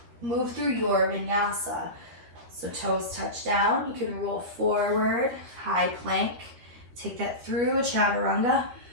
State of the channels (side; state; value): left; late; 13 ms